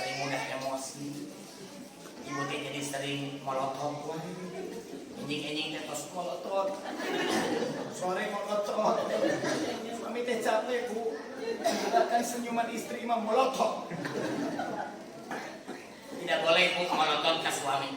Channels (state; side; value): identical; both; correlation 1.00